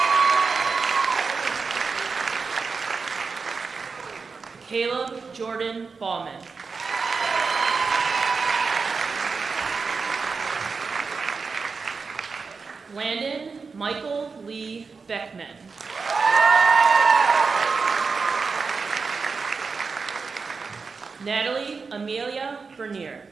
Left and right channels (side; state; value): left; quieter; 4.8 dB